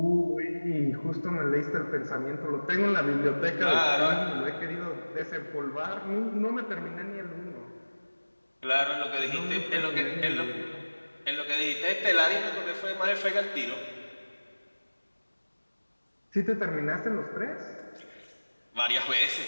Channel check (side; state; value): both; inverted; correlation -1.00